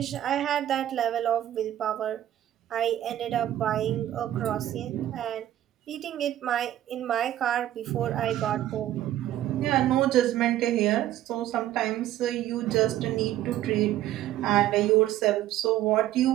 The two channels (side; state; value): left; quieter; 12.9 dB